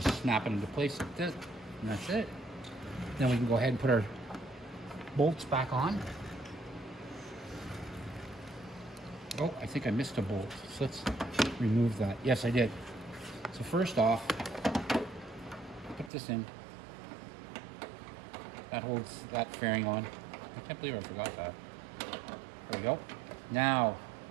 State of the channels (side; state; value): left; drops out; at 16.1 s